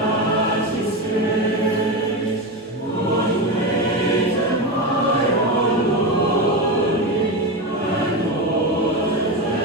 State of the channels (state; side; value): normal; both; correlation 0.17